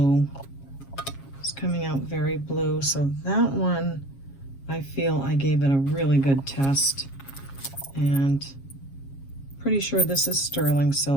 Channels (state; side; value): late; right; 7.3 ms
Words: It's coming out very blue, so that one I feel I gave it a really good test, and pretty sure this is sterling